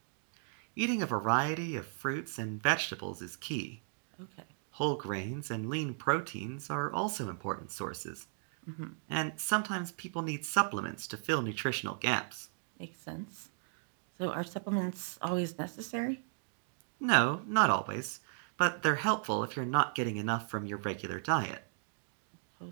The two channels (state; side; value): silent; left; digital silence